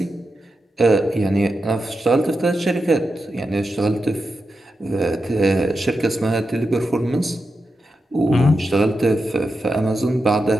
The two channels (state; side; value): normal; both; correlation 0.88